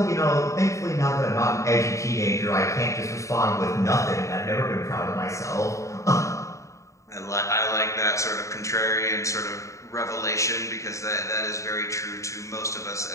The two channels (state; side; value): late; right; 0.15 ms